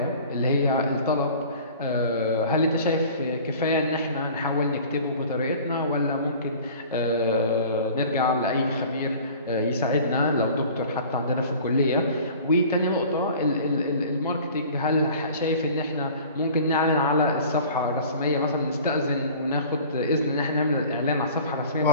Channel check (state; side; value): inverted; both; correlation -0.45